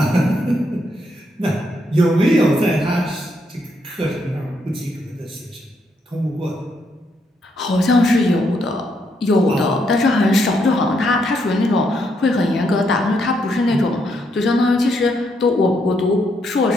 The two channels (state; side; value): normal; both; correlation 0.76